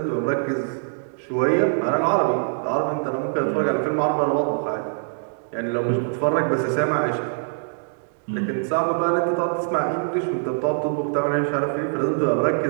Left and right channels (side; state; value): left; silent; digital silence